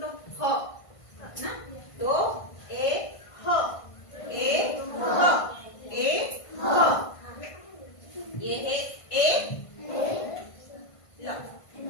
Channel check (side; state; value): right; late; 1.5 ms